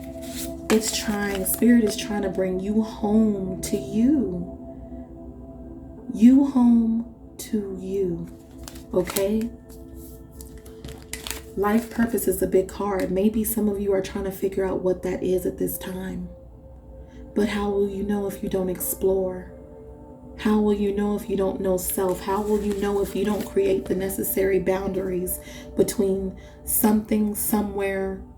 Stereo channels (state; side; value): identical; both; correlation 1.00